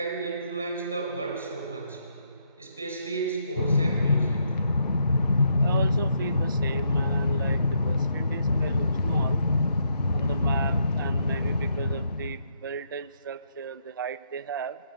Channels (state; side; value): inverted; both; correlation -0.75